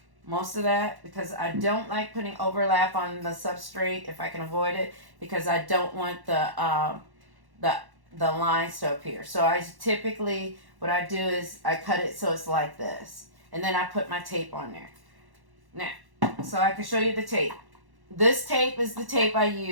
most of that because I don't like putting overlap on the substrate if I can avoid it, because I don't want the the lines to appear. So I typically, what I do is I cut it so it's like this, and then I put my tape on there. Now, so I can show you the tape. This tape is the tape I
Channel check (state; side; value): late; left; 1.1 ms